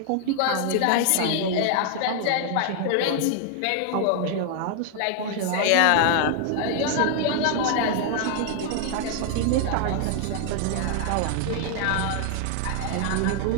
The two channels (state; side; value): different; both; correlation 0.00